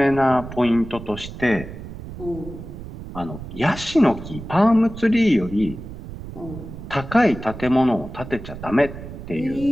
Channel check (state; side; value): noise; right; rumble, 12 dB below the sound